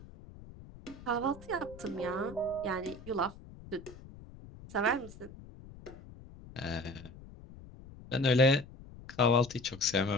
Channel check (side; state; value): left; noise; rumble, 18 dB below the sound